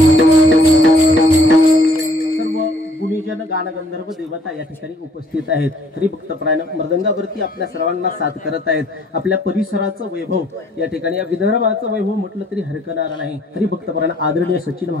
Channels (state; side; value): normal; both; correlation 0.60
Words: गुणीजन गानगंधर्व देवता या ठिकाणी उपस्थित आहेत. हरिभक्तपरायण मृदंगावरती आपल्या सर्वांना साथ करत आहेत. आपल्या परिसराचं वैभव या ठिकाणी, या विदर्भाचं वैभव म्हटलं तरी हरकणार नाही. हरिभक्तपरायण आदरणीय सचिन